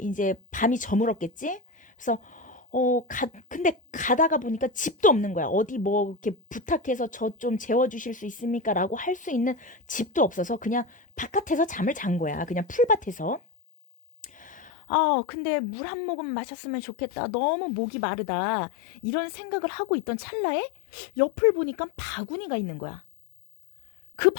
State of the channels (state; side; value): drops out; right; at 14.7 s